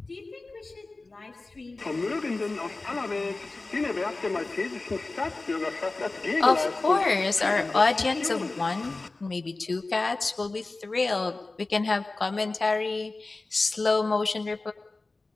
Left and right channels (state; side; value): quieter; right; 3.3 dB